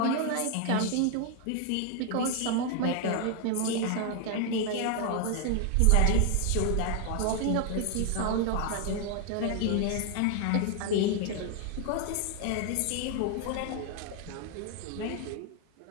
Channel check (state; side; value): different; both; correlation 0.00